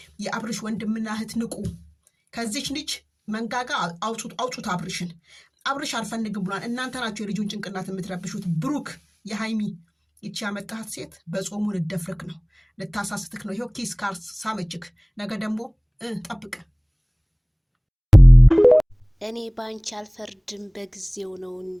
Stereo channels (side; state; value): both; identical; correlation 1.00